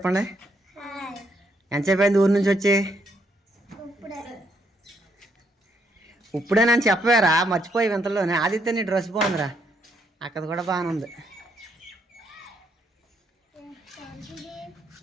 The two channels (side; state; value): both; normal; correlation 0.74